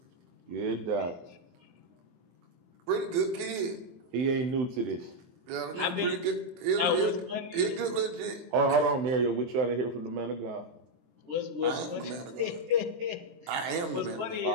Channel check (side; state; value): left; late; 24 ms